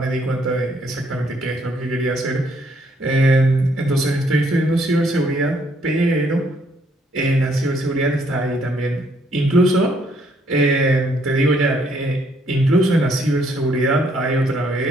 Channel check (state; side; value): normal; both; correlation 0.68